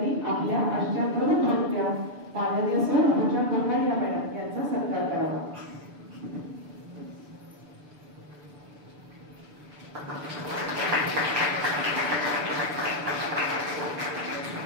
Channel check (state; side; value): late; left; 6.8 ms